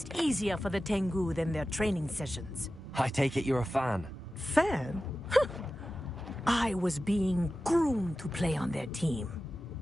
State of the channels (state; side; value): normal; both; correlation 0.94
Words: easier for the Tengu than their training sessions. I take it you're a fan. Fan? I was being groomed to play on their team.